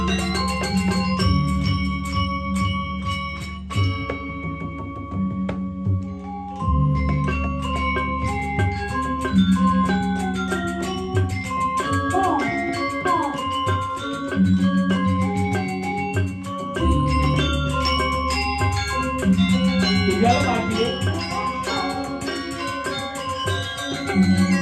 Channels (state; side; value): identical; both; correlation 1.00